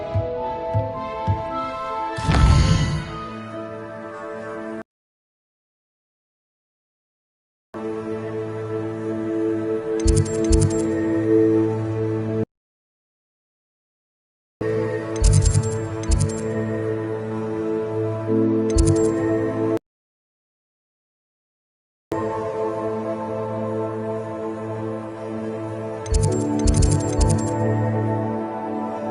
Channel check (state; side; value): identical; both; correlation 1.00